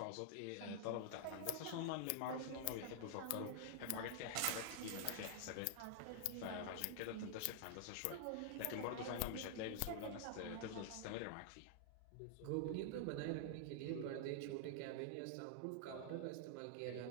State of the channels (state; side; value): different; both; correlation 0.00